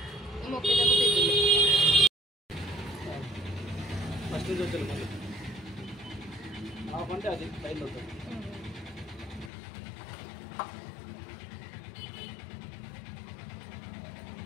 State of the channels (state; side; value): drops out; right; at 9.5 s